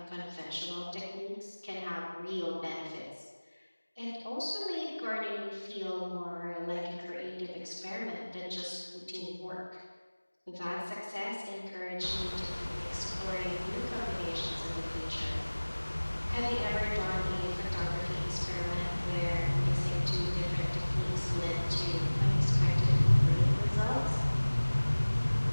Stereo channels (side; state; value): both; inverted; correlation -1.00